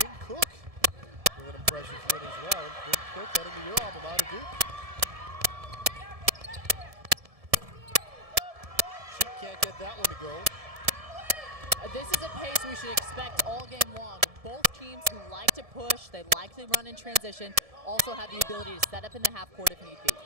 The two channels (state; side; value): late; left; 1.7 ms